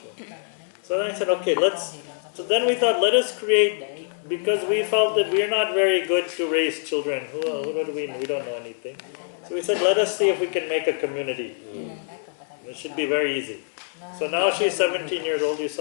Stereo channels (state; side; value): silent; right; 62 dB below the other